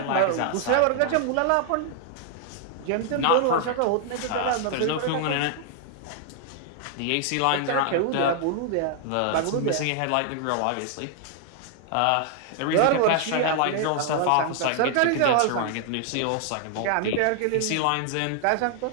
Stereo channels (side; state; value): both; different; correlation 0.00